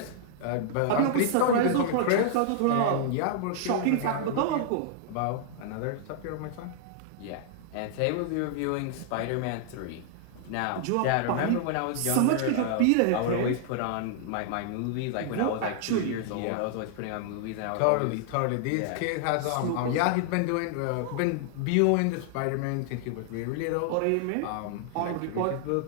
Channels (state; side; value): different; both; correlation -0.01